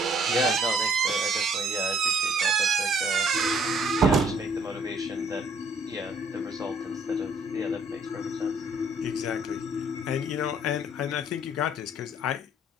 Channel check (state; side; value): normal; both; correlation 0.62